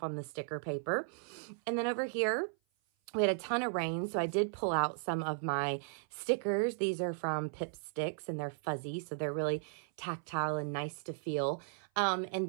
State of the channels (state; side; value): silent; left; 54 dB below the other